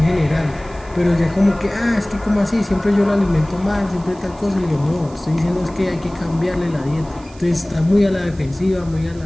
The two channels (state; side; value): noise; right; hiss, 25 dB below the sound